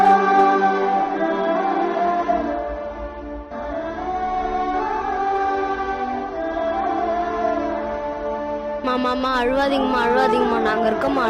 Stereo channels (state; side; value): identical; both; correlation 1.00